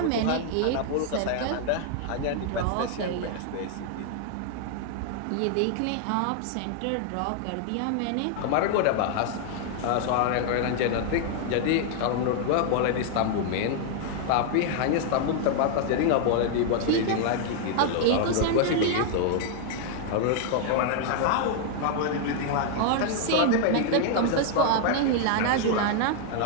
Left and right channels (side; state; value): both; different; correlation 0.00